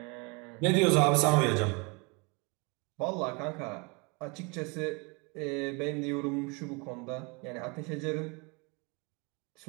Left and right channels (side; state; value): left; quieter; 30.5 dB